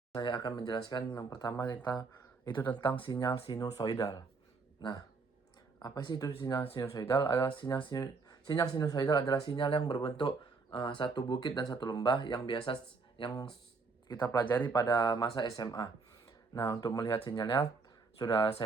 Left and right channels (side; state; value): left; quieter; 4.4 dB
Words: Saya akan menjelaskan yang pertama itu tentang sinyal sinusoidal. Nah, apa sih itu sinyal sinusoidal? Sinyal sinusoidal adalah sinyal yang berbentuk satu bukit dan satu lembah yang kita pelajari pada masa SMA. Nah, untuk melihat sinyalnya sudah